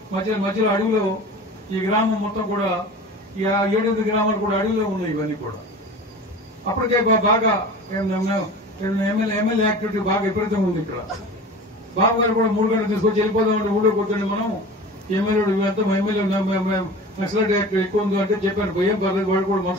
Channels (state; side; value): normal; both; correlation 0.37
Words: మధ్యలో అడవిలో ఈ గ్రామం మొత్తం కూడా 7-8 గ్రామాలు కూడా అడవిలో ఉన్నాయి. ఇవన్నీ కూడా అప్పటికే బాగా ఎమ్మెల్యే యాక్టివిటీ బాగా విపరీతంగా ఉంది ఇక్కడ. బాబు గారు కూడా 3 గంటలు తీసుకొచ్చి వెళ్ళిపోదామంటే ఊళ్ళో కూర్చొని మనం ఎమ్మెల్యే ఇవంతా ఎమ్మెల్యే నక్సలైట్ యాక్ట్ ఎక్కువ ఉంది అంటే చెప్పాను. ఏం పర్లేదు, వాళ్ళు కూడా